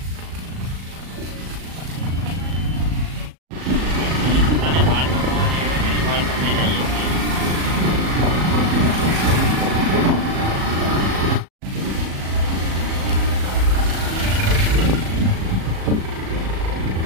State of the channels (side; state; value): left; late; 37 ms